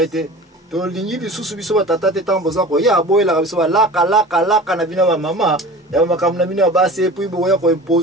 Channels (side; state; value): both; normal; correlation 0.38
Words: tolingi lisusu biso batata te ntango boza koya boyelaka biso balaka na bino ba mama ya makambo na bino ya basi epui boya